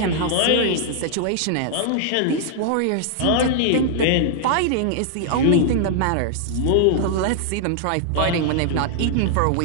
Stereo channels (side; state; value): both; different; correlation -0.01